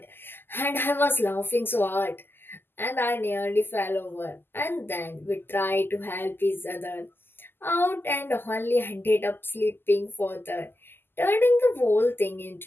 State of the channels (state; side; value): late; right; 0.10 ms